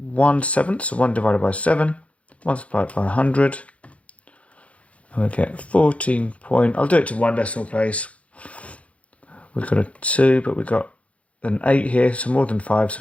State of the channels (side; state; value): right; late; 0.064 ms